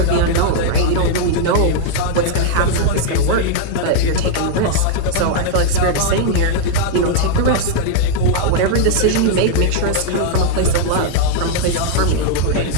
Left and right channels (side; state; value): both; different; correlation -0.01